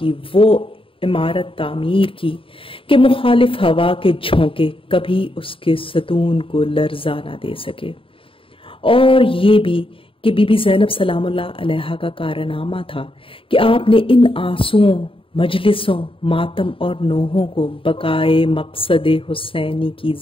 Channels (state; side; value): late; right; 0.26 ms